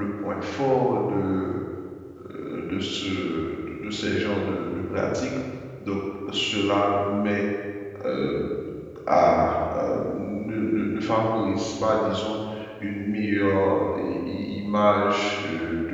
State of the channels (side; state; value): both; identical; correlation 1.00